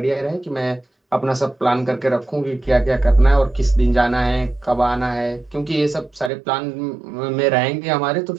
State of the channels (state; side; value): drops out; left; at 6.3 s